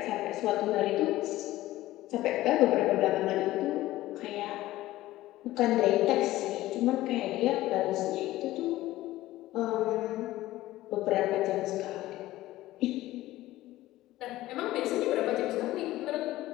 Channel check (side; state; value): right; quieter; 16.2 dB